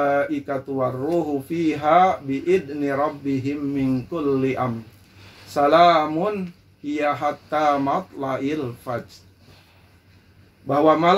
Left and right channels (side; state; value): both; identical; correlation 1.00